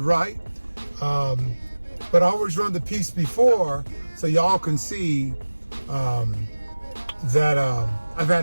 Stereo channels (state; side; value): inverted; both; correlation -1.00